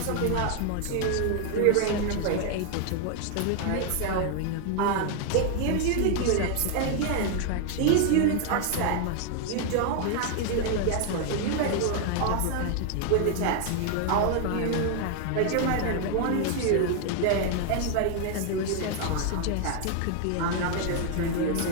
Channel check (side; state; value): both; different; correlation 0.00